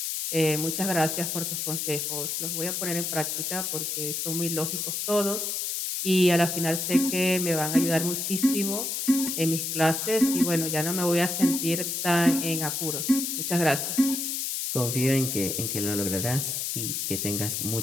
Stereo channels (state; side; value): noise; left; hiss, 2 dB below the sound